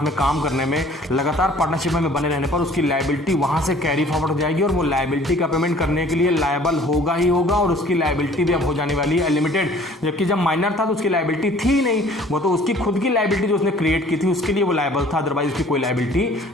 में काम करने में, लगातार पार्टनरशिप में बने रहने पर उसकी लायबिलिटी वहां से कैरी फॉरवर्ड हो जाएगी और वो लायबिलिटी का पेमेंट करने के लिए लायबल होगा ही होगा और उसकी लायबिलिटी भी अब हो जाने वाली है लिमिटेड। जबकि जब माइनर था तो उसकी लायबिलिटी थी ही नहीं, वो तो उसकी खुद की लायबिलिटी जो उसने क्रिएट की थी उसके लिए वो लायबल था, अदरवाइज उसकी कोई लायबिलिटी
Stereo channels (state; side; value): normal; both; correlation 0.53